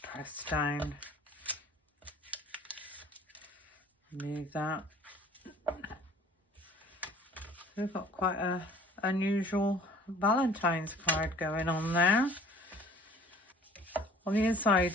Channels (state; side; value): normal; both; correlation 0.50